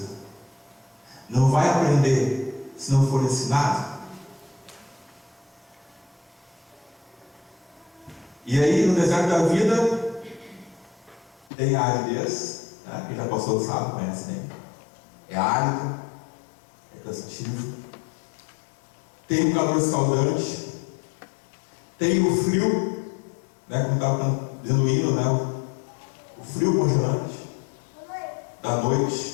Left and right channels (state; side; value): drops out; right; at 11.5 s